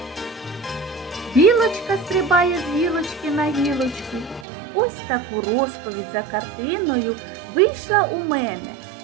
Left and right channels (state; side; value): drops out; left; at 4.5 s